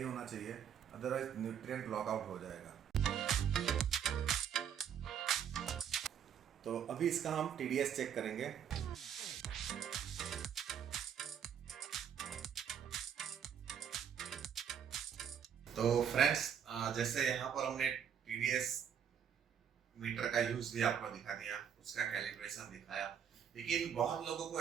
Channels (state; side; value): quieter; left; 8.4 dB